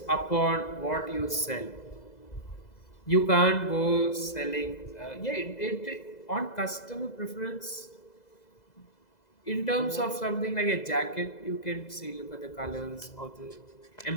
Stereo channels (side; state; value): right; late; 2.0 ms